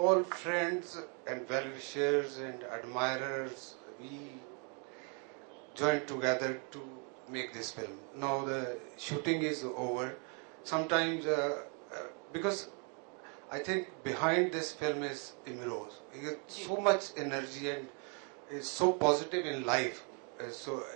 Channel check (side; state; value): left; quieter; 37.6 dB